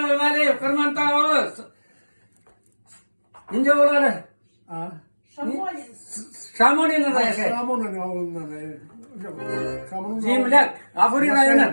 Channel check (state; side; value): inverted; both; correlation -1.00